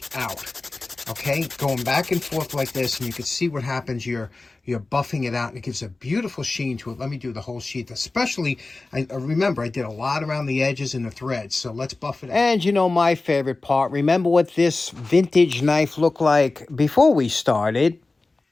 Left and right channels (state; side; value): quieter; right; 3.4 dB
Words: out. Okay, going back and forth like this, and you can see what happens. You're buffing it out, and it gives a beautiful sheen to it. Let me do the whole sheath. Especially, remember, I did a lot around the edges and the threads, so let's buff it out. And you know my favorite part, remember what this vintage knife looked like before we started?